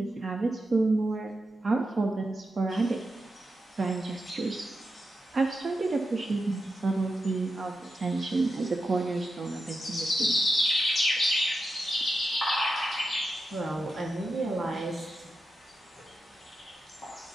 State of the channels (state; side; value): normal; both; correlation 0.89